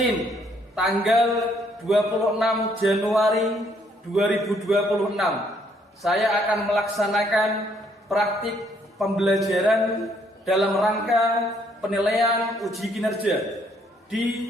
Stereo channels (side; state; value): both; normal; correlation 0.68